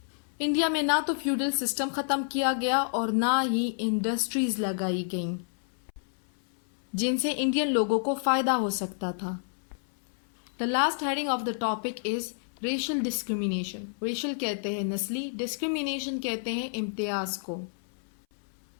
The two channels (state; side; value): silent; right; 58 dB below the other